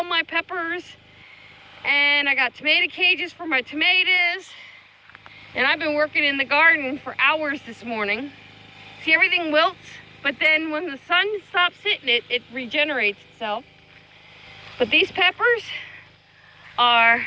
my peppers, and I got tomato cages for my tomatoes. And I've been working in the garden for hours this morning. See, everything wilts. But then when the sun stops hitting it, it regenerates itself. But these peppers are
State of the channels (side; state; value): both; identical; correlation 1.00